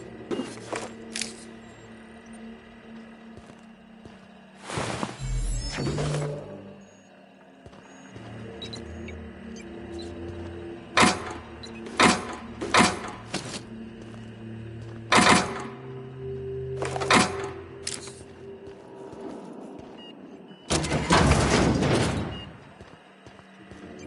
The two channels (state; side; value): identical; both; correlation 1.00